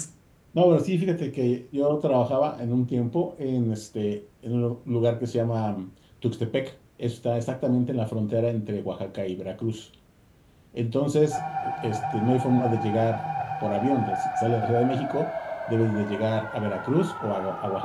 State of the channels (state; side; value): identical; both; correlation 1.00